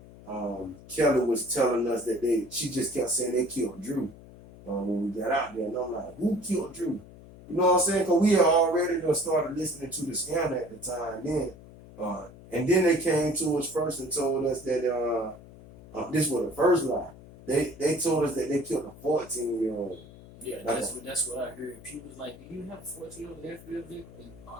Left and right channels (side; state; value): left; noise; hum, 19 dB below the sound